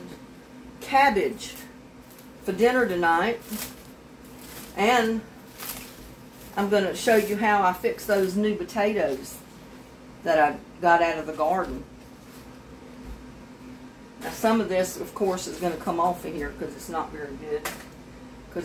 cabbage for dinner tonight. And I'm going to show you how I fix those new potatoes that I got out of the garden. Now some of this, of course, is going to come off of here because it's not very good.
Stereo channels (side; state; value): both; identical; correlation 1.00